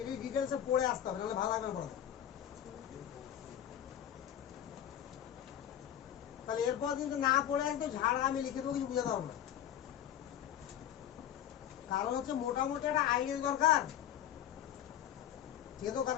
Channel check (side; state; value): right; quieter; 10.8 dB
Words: ডিটেলসে পড়ে আসতে হবে, নাহলে ভালো লাগবে না পড়াতে। তাহলে এরপর কিন্তু না পড়ে একদম ঝাড়া আমি লিখে দেবো, কিছু বুঝাতে পারবো না। কারণ হচ্ছে মোটামুটি একটা আইডিয়া দরকার, ঠিক আছে?